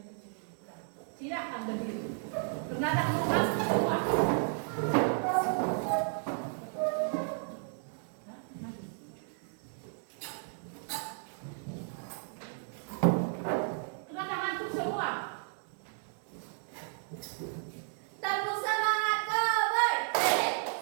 Silakan berdiri. Karena tak mau masuk semua. Karena ngantuk semua. Tepuk semangat Koboy.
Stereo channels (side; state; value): left; silent; 55 dB below the other